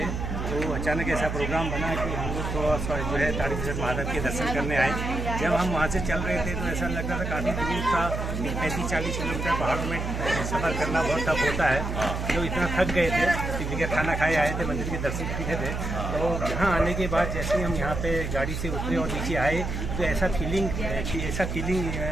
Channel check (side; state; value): right; noise; hum, 3 dB below the sound